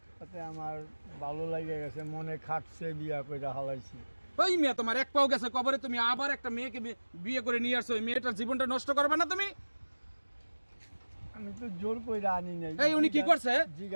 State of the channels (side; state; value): both; inverted; correlation -1.00